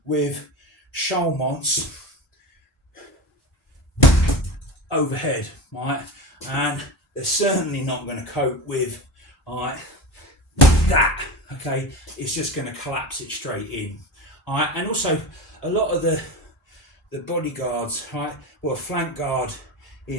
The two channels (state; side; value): normal; both; correlation 0.25